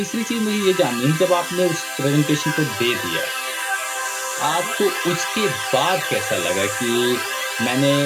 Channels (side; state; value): both; identical; correlation 1.00